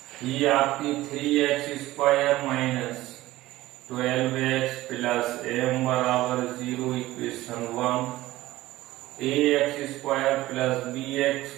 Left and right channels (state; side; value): quieter; left; 16.8 dB